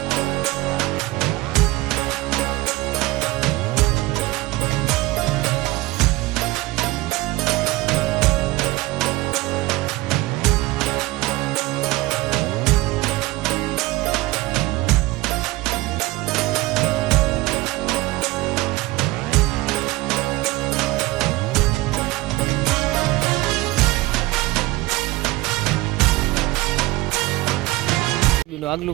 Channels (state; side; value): quieter; left; 19.9 dB